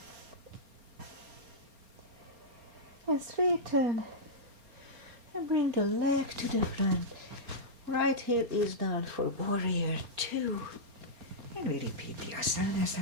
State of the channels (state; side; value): late; left; 4.3 ms